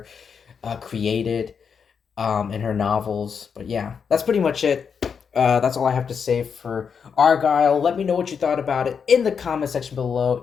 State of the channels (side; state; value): right; quieter; 6.5 dB